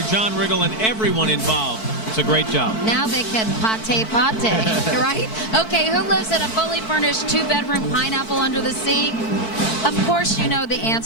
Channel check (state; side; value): late; right; 4.5 ms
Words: John Riggle, and everyone involved. It's a great job. Now they can pate, right? Okay, who lives in a fully furnished two-bedroom pineapple under the sea? Of course you know the